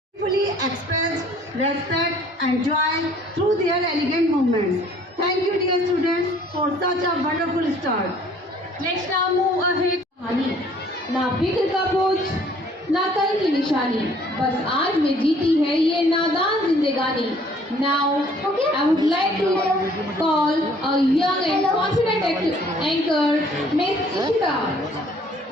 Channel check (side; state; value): both; normal; correlation 0.57